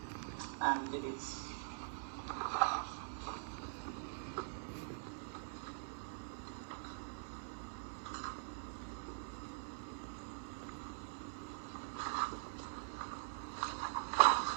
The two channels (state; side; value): silent; left; digital silence